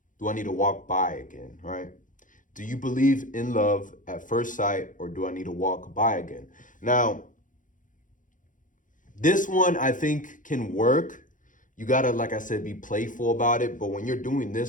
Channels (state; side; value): late; right; 0.38 ms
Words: Do I need to walk by again, right? Do you believe in love at first sight, or do I need to walk by again? Now, this one I think can work. You gotta, like I said, be playful about it. But when you're doing